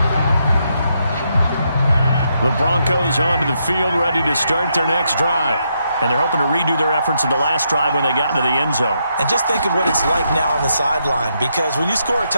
The Broncos onto the field, ready to start their next drive. And they're hoping to redo their efforts in the last drive when they got into the end zone. And just think of what it's like now on the sideline, because when you score a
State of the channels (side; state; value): both; inverted; correlation -0.79